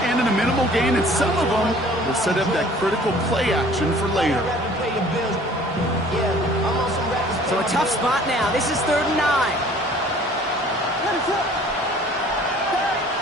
end in a minimal gain, and some of them will set up that critical play action for later. So a tough spot now. This is 3rd and 9.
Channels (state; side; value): normal; both; correlation 0.52